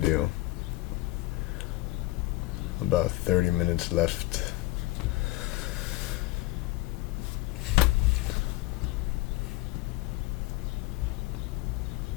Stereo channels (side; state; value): right; quieter; 19.0 dB